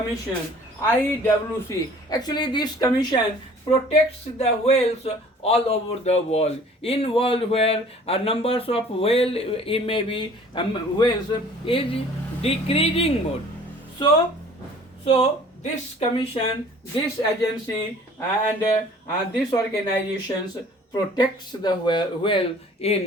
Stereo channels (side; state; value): both; normal; correlation 0.51